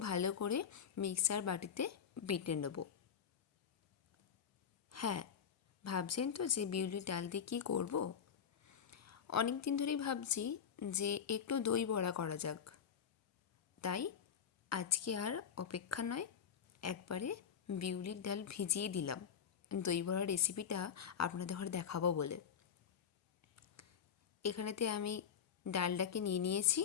ভালো করে মিক্সার বাটিতে বেটে নেব। হ্যাঁ, ভাবছেন তো যে বিউলির ডাল দিয়ে কী করব? অনেক দিন ধরেই ভাবছি যে একটু দই বড়া করা যাক। তাই আজকে আর অপেক্ষা নয়, একবারে বিউলির ডাল ভিজিয়ে দিলাম দই বড়ার রেসিপিটা আপনাদের ঘরে দেখাবো বলে। এখানেতে আমি ডালটাকে নিয়ে নিয়েছি।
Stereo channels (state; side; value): quieter; right; 7.7 dB